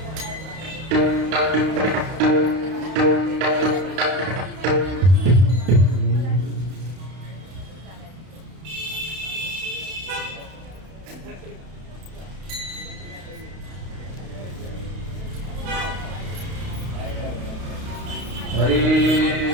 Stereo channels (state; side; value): late; left; 32 ms